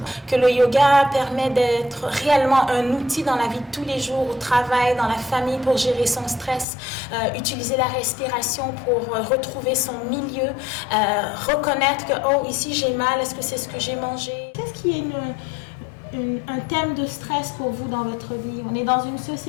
Que le yoga permet d'être réellement un outil dans la vie de tous les jours, au travail, dans la famille pour gérer son stress, utiliser la respiration pour retrouver son milieu, reconnaître que oh, ici j'ai mal, est-ce que c'est ce que j'ai mangé? Qu'est-ce qui est un thème de stress pour vous dans votre vie? On est dans une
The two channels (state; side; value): drops out; right; at 6.7 s